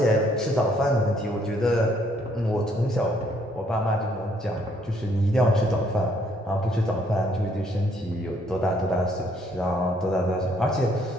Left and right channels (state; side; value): normal; both; correlation 0.67